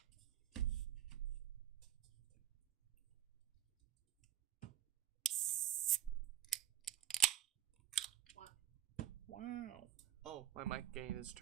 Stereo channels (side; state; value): left; quieter; 11.6 dB